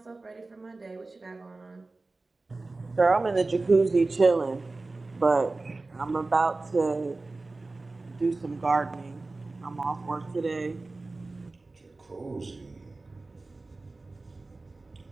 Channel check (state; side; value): quieter; left; 3.4 dB